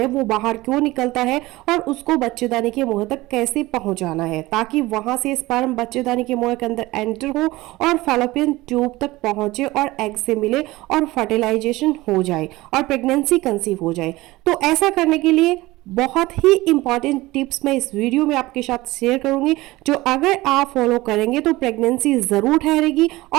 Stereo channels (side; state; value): left; quieter; 19.3 dB